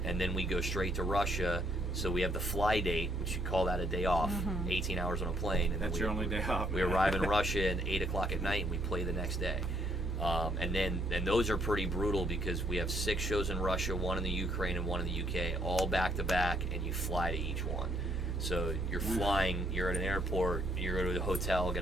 and then we go straight to Russia. So we have the fly date, which you call that a day off, 18 hours on a plane. And That's then your only day off. we arrive in Russia at 8 o'clock at night, and we play the next day. And those are pretty brutal because we have 6 shows in Russia, 1 in the Ukraine, and 1 in the UK, all back to back, and you fly to each one. So you're flying, you're at an airport, you go to a hotel,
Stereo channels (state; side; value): normal; both; correlation 0.69